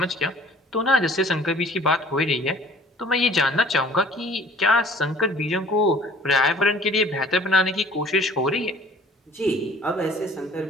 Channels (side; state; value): both; normal; correlation 0.51